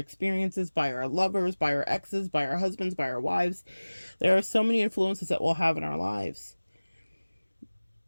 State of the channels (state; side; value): inverted; both; correlation -1.00